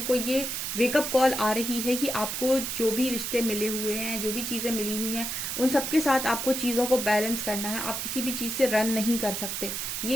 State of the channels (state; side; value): noise; right; hiss, 3 dB below the sound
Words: को ये वेकअप कॉल आ रही है कि आपको जो भी रिश्ते मिले हुए हैं, जो भी चीजें मिली हुई हैं, उन सबके साथ आपको चीजों को बैलेंस करना है। आप किसी भी चीज से रन नहीं कर सकते।